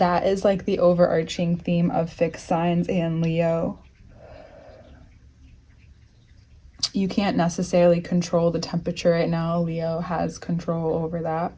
is like the overarching theme of fixed signs and Leo. You can't necessarily control the temperature right now. Leo has control over that.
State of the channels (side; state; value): both; identical; correlation 1.00